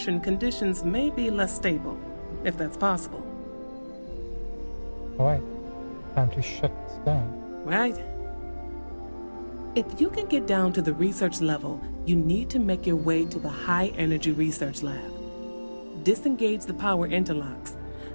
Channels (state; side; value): inverted; both; correlation -1.00